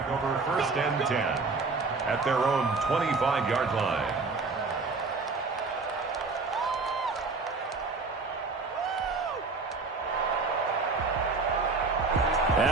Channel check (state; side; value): quieter; left; 4.0 dB